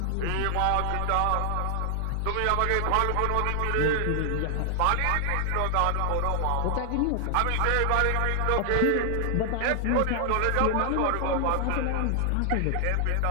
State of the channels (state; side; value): different; both; correlation 0.00